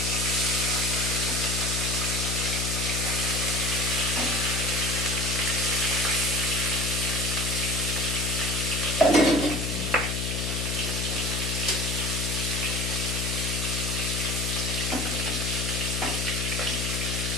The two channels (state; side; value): noise; left; hum, 1 dB below the sound